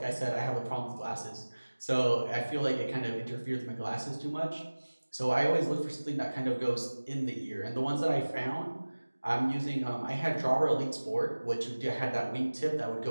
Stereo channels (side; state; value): both; inverted; correlation -1.00